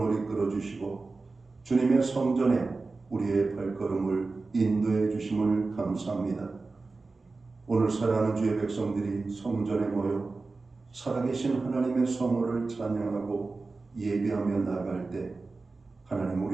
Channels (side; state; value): left; quieter; 3.8 dB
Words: 이끌어 주시고 주님의 성전에 우리의 발걸음을 인도해 주심을 감사합니다. 오늘 사랑하는 주의 백성들이 성전에 모여 살아계신 하나님의 성호를 찬양하고 예배하며 나아갈 때 하나님,